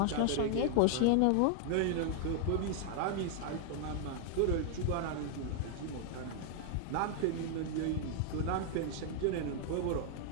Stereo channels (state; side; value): different; both; correlation 0.00